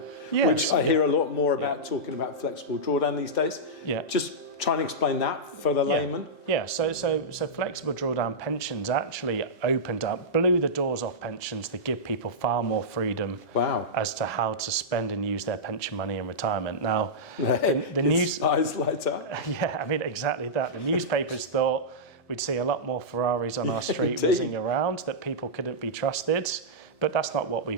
Yes, which I hear a lot more about talking about flexible drawdown these days. Yeah. Just try and explain that for the layman. Yeah, so flexible drawdown pensions actually opened up, blew the doors off pensions to give people far more freedom as to how to spend and use their pension money in retirement. Now, the news... eyes light up. Yeah, I mean, exactly that. The newspapers thought we'd see a lot more Ferraris on our street whizzing around, that people couldn't be trusted. But that's not what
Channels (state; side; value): late; right; 2.0 ms